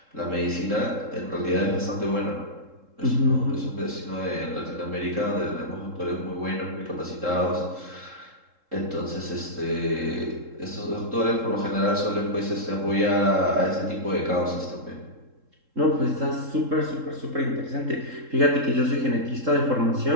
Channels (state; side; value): late; left; 3.7 ms